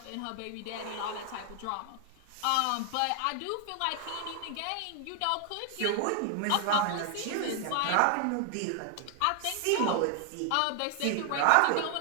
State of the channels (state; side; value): different; both; correlation 0.00